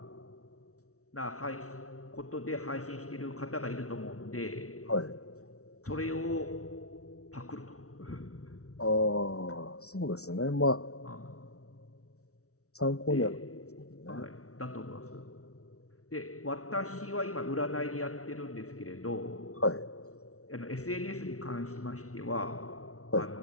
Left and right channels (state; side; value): late; right; 0.64 ms